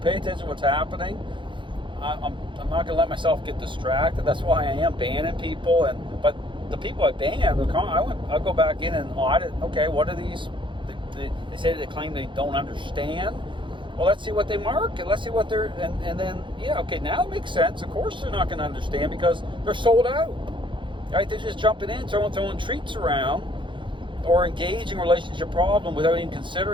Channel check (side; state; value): left; late; 0.24 ms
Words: attention to what's happening. I'm not going to let myself get distracted. That's why I am banning people. But the people I banned, I'll go back in and audit. Okay, what are these? They say they claim they don't understand. Well, let's see what they market. Let's see what they're, and then, now it makes sense. Of course they're not going to understand because they're sold out. Right? They're just jumping in, throwing treats around, or engaging a relationship problem without even